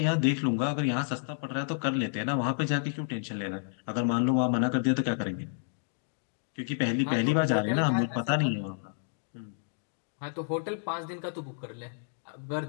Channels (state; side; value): silent; right; digital silence